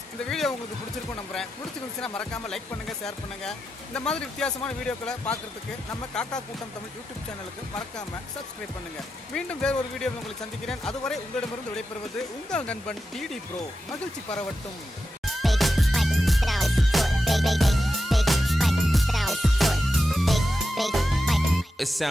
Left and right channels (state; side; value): normal; both; correlation 0.89